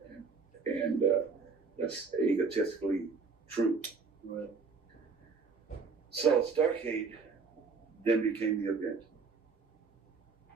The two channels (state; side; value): quieter; left; 4.8 dB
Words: And that's egotistically true. Right. So Starcade then became the event